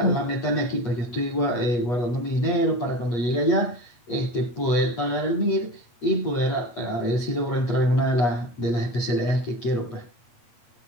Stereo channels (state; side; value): late; right; 8.3 ms